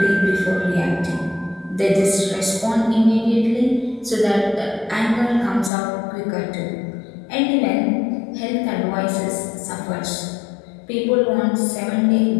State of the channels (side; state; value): right; drops out; at 5.7 s